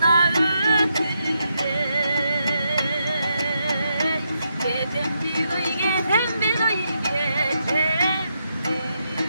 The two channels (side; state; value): both; inverted; correlation -0.81